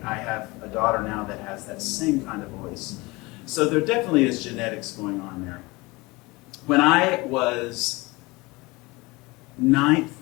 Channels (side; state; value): right; quieter; 23.6 dB